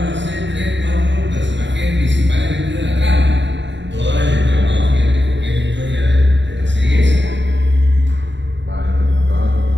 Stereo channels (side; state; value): left; late; 0.53 ms